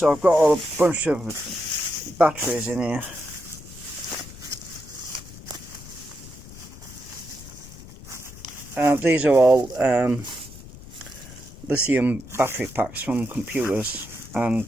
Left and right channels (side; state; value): left; noise; rumble, 16 dB below the sound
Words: I've got a bunch of batteries in here. These are all lithium battery packs from computers, and